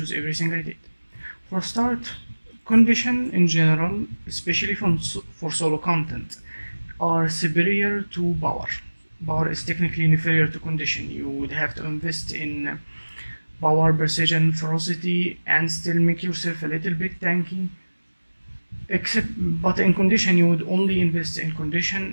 everything I did. For start, condition in general, especially for solo content, are superior to power. Power is technically inferior to condition. You would have to invest in power, precision, ferocity, and still make yourself a little bit tanky. But in condition, you would only invest in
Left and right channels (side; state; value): both; inverted; correlation -1.00